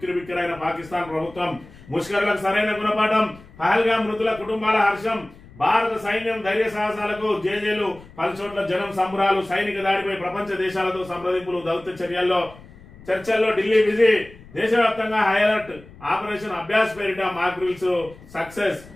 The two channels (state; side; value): noise; left; rumble, 21 dB below the sound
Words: పాకిస్తాన్ ప్రభుత్వం, ముష్కరులకు సరైన గుణపాఠం, పహల్గామ్ మృతుల కుటుంబాల హర్షం, భారత సైన్యం ధైర్య సాహసాలకు జేజేలు, పలుచోట్ల జనం సంబరాలు, సైనిక దాడిపై ప్రపంచ దేశాలతో సంప్రదింపులు, దౌత్య చర్చల్లో ఢిల్లీ బిజీ, దేశవ్యాప్తంగా హై అలర్ట్, ఆపరేషన్ అభ్యాస్ పేరిట మాక్ డ్రిల్స్ సక్సెస్.